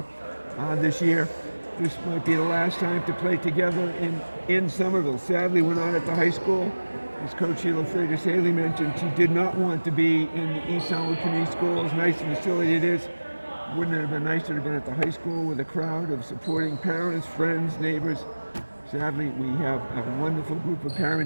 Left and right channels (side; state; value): both; inverted; correlation -1.00